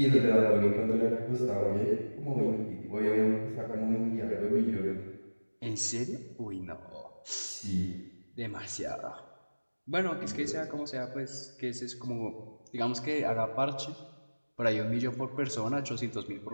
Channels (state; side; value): inverted; both; correlation -1.00